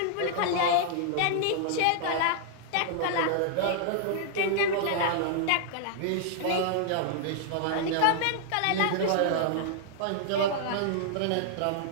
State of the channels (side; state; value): both; different; correlation -0.01